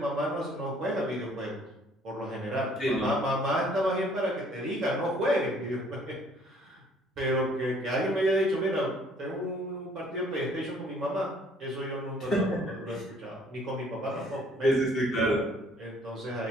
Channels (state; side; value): normal; both; correlation 0.59